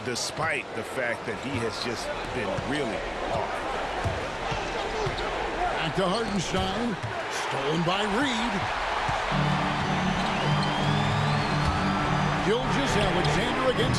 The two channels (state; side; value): identical; both; correlation 1.00